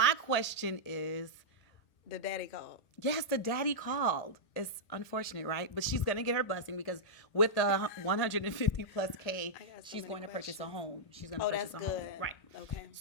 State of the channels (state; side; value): late; right; 1.8 ms